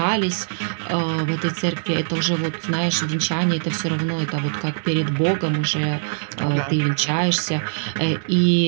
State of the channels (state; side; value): silent; left; digital silence